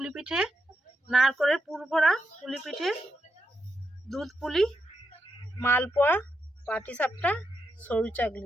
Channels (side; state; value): both; normal; correlation 0.84